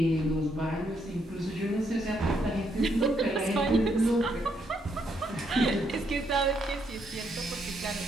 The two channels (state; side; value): normal; both; correlation 0.75